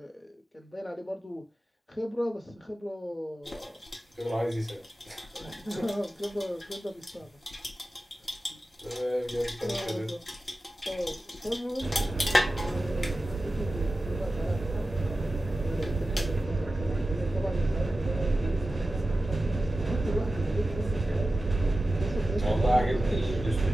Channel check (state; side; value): normal; both; correlation 0.94